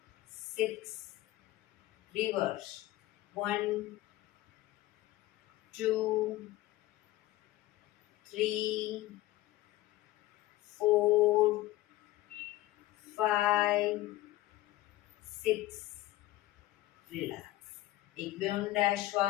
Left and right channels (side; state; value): right; quieter; 16.5 dB